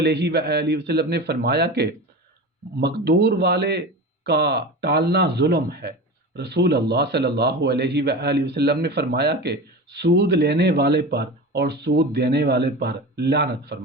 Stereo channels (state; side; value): normal; both; correlation 0.29